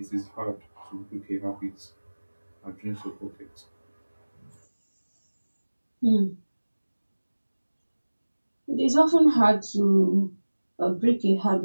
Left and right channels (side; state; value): both; inverted; correlation -1.00